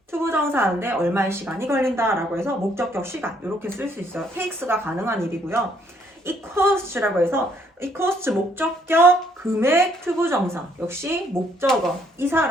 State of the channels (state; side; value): normal; both; correlation 0.67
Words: 투부정사 하는데 얼마의 시간이 걸린다라고 해서 목적격 시간 이렇게 쓸 수 있어요. takes가 가능한 일이고요. it costs라고 해서 it costs 목적격, 금액, 투부정사 역시 목적어. 이